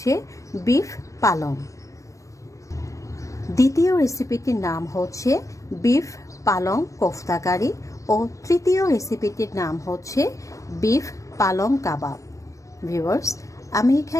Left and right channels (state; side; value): late; right; 0.16 ms